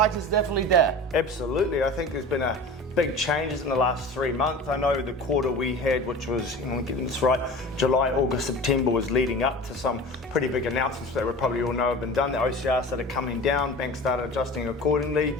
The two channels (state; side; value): normal; both; correlation 0.36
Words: is definitely there. Absolutely. I think there's been a big changes in the last 3 months. I know the quarter we had, which was, getting this right, July, August, September, was leading up to some pretty big announcements that we probably all know have been done. The OCR started coming down, banks started adjusting accordingly,